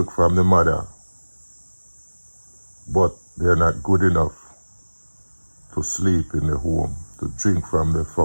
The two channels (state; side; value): inverted; both; correlation -1.00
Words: from the mother. But they're not good enough to sleep in the home, to drink from the